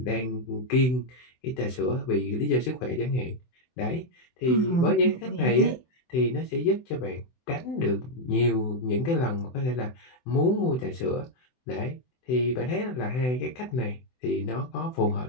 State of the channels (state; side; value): late; right; 24 ms